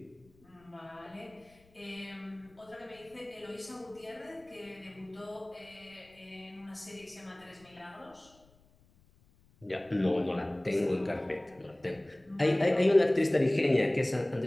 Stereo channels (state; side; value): noise; left; rumble, 30 dB below the sound